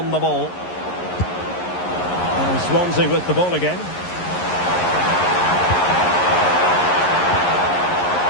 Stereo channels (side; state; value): right; late; 11 ms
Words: the ball. And Swansea with the ball again.